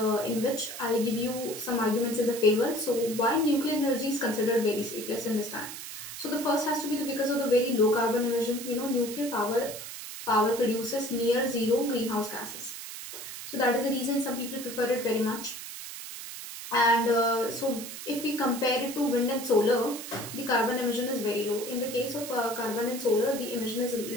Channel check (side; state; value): right; noise; hiss, 10 dB below the sound